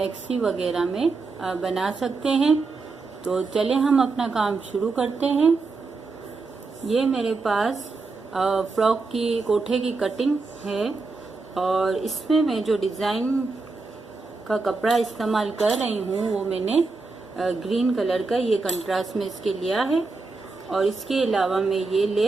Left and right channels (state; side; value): quieter; left; 3.9 dB